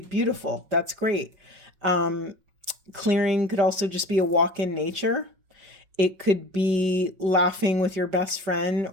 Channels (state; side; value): late; left; 5.4 ms